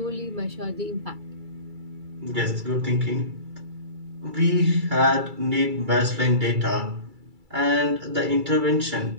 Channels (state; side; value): late; left; 2.3 ms